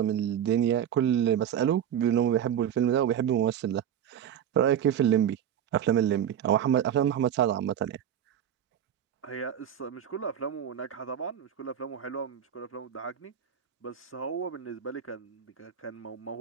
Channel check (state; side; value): quieter; left; 9.5 dB